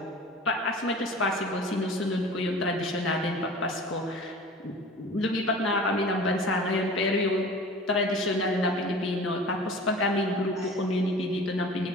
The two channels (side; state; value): both; normal; correlation 0.41